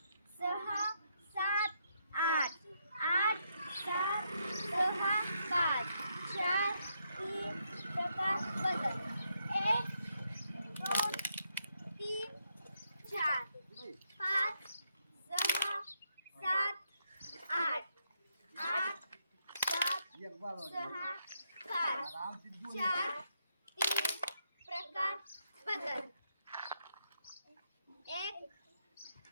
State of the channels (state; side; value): inverted; both; correlation -0.78